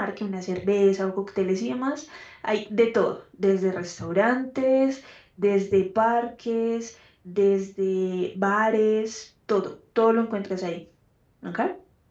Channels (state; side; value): identical; both; correlation 1.00